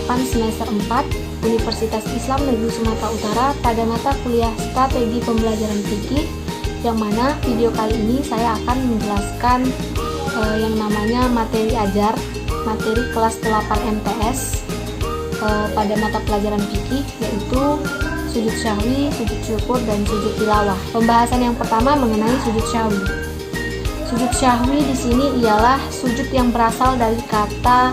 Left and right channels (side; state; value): both; identical; correlation 1.00